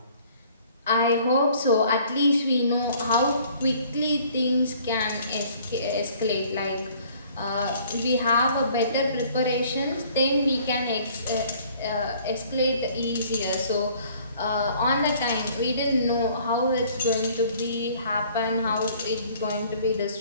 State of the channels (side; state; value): both; inverted; correlation -0.56